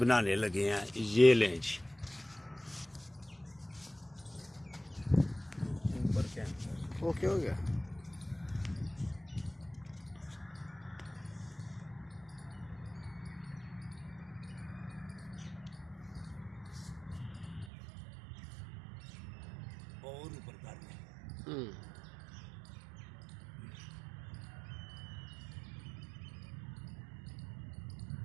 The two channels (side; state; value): left; drops out; at 17.7 s